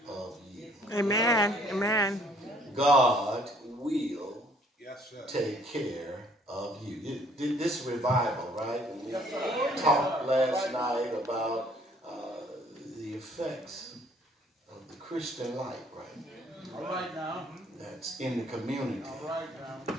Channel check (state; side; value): normal; both; correlation 0.60